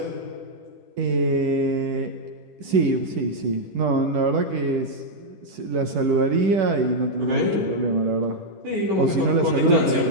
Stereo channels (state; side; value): late; left; 10 ms